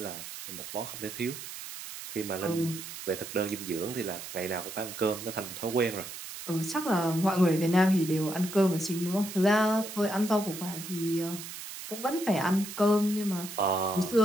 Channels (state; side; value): noise; right; hiss, 10 dB below the sound